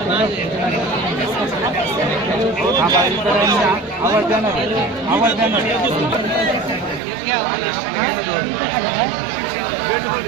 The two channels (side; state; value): left; drops out; at 7.0 s